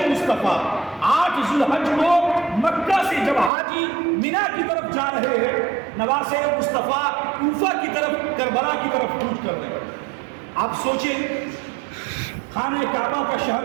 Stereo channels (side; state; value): left; drops out; at 3.5 s